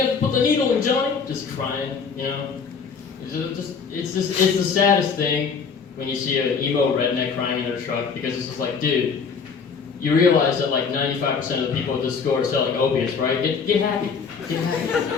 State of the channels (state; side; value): quieter; right; 5.8 dB